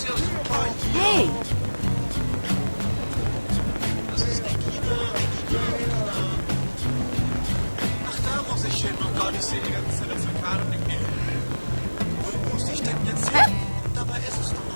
ja super. Hey. Das ist Regina. Ach, da muss ich hin. Oh Gott, ich sehe die ganze Zeit auf der Karte und denke mir, wo muss ich denn jetzt hin? Dabei ist es doch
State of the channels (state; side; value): inverted; both; correlation -1.00